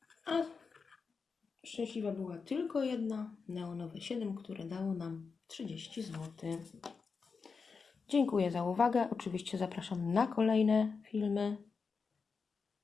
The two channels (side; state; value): right; quieter; 5.1 dB